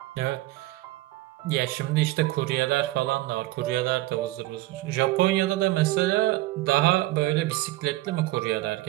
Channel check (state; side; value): quieter; left; 18.0 dB